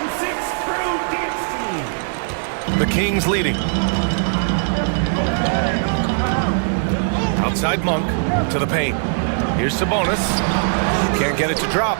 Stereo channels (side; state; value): left; silent; 60 dB below the other